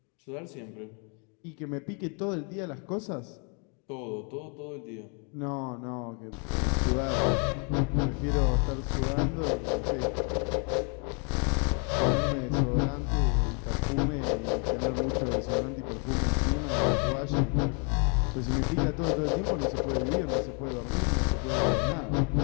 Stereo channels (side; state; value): right; quieter; 36.9 dB